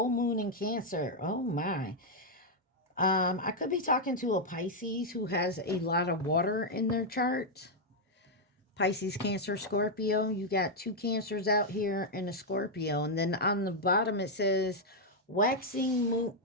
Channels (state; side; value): normal; both; correlation -0.02